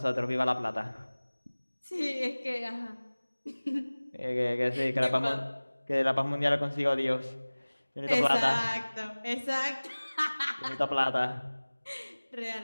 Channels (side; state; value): both; inverted; correlation -1.00